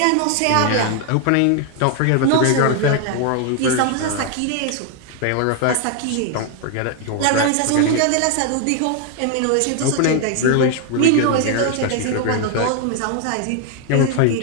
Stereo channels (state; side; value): different; both; correlation 0.00